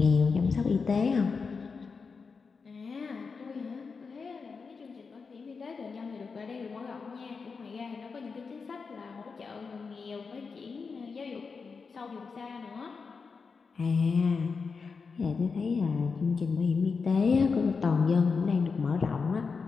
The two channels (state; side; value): quieter; right; 5.0 dB